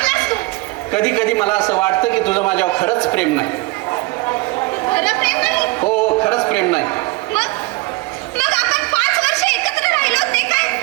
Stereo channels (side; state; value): left; quieter; 23.3 dB